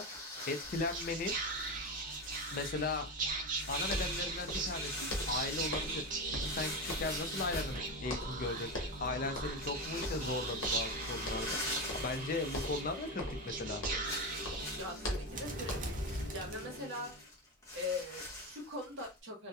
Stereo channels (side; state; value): both; normal; correlation 0.17